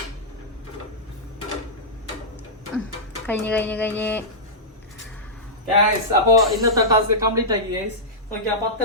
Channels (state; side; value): normal; both; correlation -0.13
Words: കഴിഞ്ഞ് അപ്പൊ ഇന്നത്തെ ടാസ്ക് കംപ്ലീറ്റ് ആക്കി ഗൈസ്. നോക്കിയാ